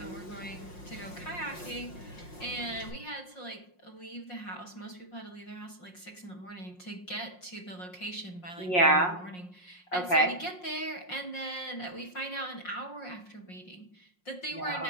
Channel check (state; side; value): late; right; 5.6 ms